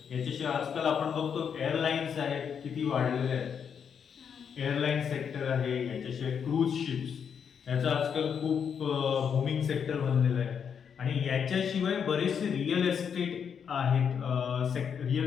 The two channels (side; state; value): right; quieter; 7.3 dB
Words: याच्याशिवाय आजकाल आपण बघतो एअरलाईन्स आहेत किती वाढलेले आहेत. एअरलाईन सेक्टर आहे, याच्याशिवाय क्रूज शिप्स याचं आजकाल खूप बूमिंग सेक्टर बनलेलं आहे. आणि याच्याशिवाय बरेचसे रिअल एस्टेट आहेत,